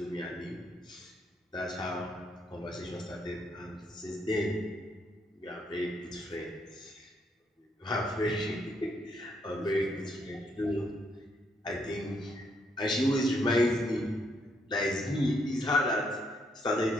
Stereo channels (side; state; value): both; normal; correlation 0.74